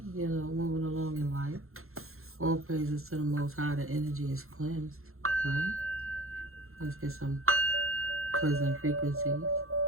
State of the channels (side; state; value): left; late; 0.62 ms